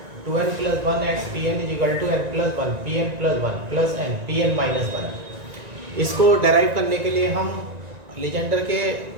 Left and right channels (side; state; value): left; late; 1.9 ms